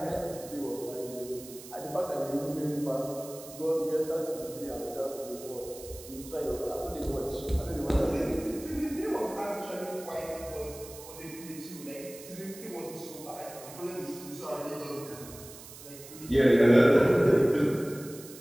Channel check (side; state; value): right; noise; hiss, 16 dB below the sound